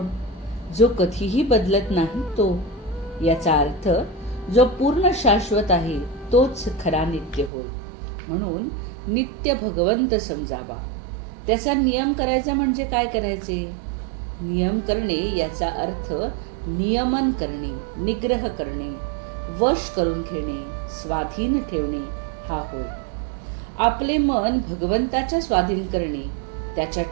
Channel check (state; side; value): drops out; left; at 7.5 s